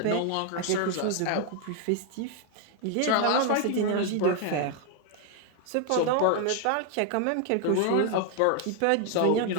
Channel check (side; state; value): both; different; correlation 0.00